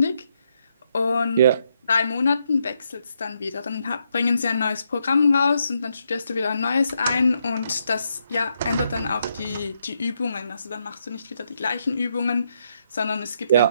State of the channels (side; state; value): both; inverted; correlation -0.78